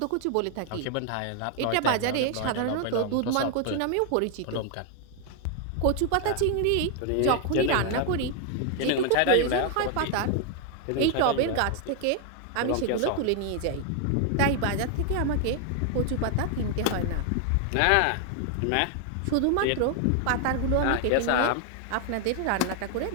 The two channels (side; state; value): both; different; correlation 0.00